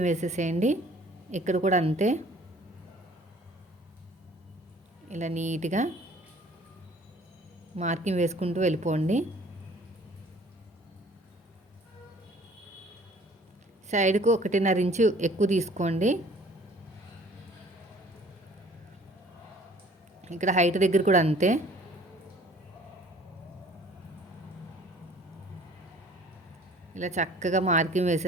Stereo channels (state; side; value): normal; both; correlation 0.53